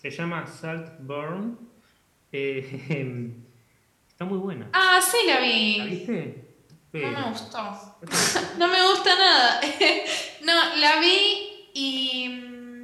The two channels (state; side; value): identical; both; correlation 1.00